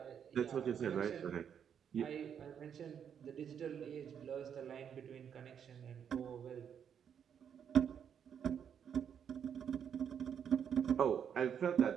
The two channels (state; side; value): quieter; left; 8.1 dB